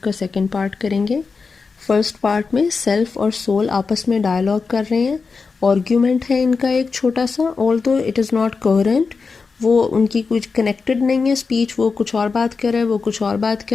کا سیکنڈ پارٹ کریں گے. فرسٹ پارٹ میں سیلف اور سول آپس میں ڈائلاگ کر رہے ہیں. آرگیومنٹ ہے ان کا ایک چھوٹا سا, آلدو اٹ از ناٹ کوہرنٹ. وہ ان کی کچھ کنیکٹڈ نہیں ہے اسپیچ, وہ کچھ اور بات کر رہا ہے, وہ کچھ اور بات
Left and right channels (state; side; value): quieter; right; 4.7 dB